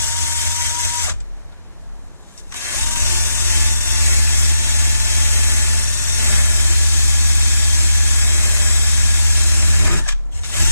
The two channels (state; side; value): inverted; both; correlation -0.84